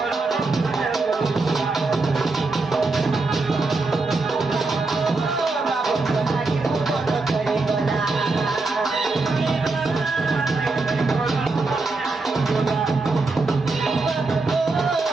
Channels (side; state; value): left; quieter; 3.6 dB